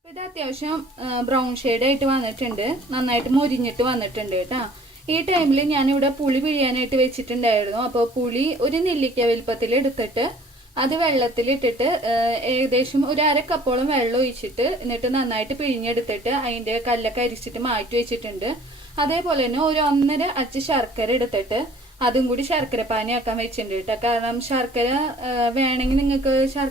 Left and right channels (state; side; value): normal; both; correlation 0.52